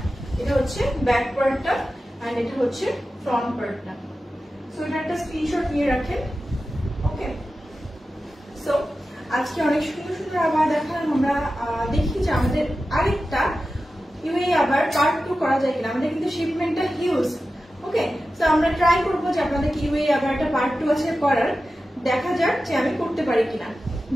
এটা হচ্ছে ব্যাক পার্টটা এন্ড এটা হচ্ছে ফ্রন্ট পার্টটা। সো এটা একটা স্ক্রিনশট নিয়ে রাখেন। ওকে, সো আজকে অনেক সুন্দর সুন্দর আবায়া দেখালাম। আমরা দেখি যে আমাদের আরেকটা ইউএই আবার পার্ট 2 করা যায় কিনা। আমাদের কিন্তু শিপমেন্টটা হিউজ। ওকে, সো আমরা ট্রাই করবো যে আপনাদেরকে ইউএই আবার একটা পার্ট 2 আছে করার। দেখা যাক যে আমি করতে পারি কিনা,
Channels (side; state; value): both; normal; correlation 0.93